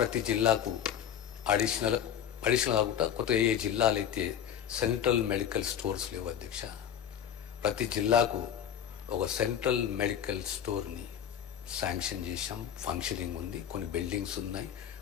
జిల్లాకు అడిషనల్ కాకుండా కొత్తగా ఏ జిల్లాలు అయితే సెంట్రల్ మెడికల్ స్టోర్స్ లేవు అధ్యక్ష, ప్రతి జిల్లాకు ఒక సెంట్రల్ మెడికల్ స్టోర్ని శాంక్షన్ చేశాం. ఫంక్షనింగ్ ఉంది, కొన్ని బిల్డింగ్స్ ఉన్నాయి,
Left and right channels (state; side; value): quieter; right; 9.4 dB